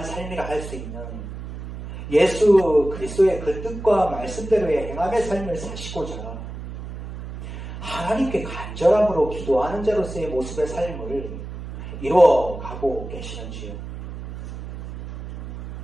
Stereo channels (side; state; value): right; noise; hum, 10 dB below the sound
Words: 삶이라 할 수 있는 예수 그리스도의 그 뜻과 말씀대로의 행함의 삶을 사시고자 하나님께 간절함으로 기도하는 자로서의 모습의 삶을 이루어가고 계시는지요?